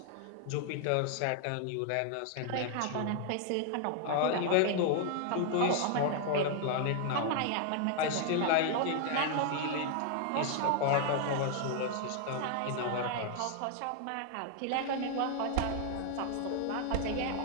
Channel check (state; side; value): different; both; correlation 0.00